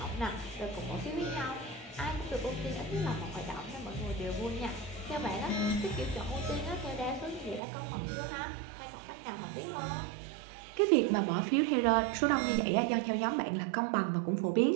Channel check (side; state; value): left; drops out; at 7.6 s